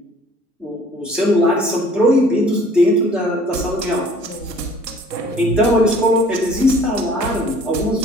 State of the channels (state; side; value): normal; both; correlation 0.54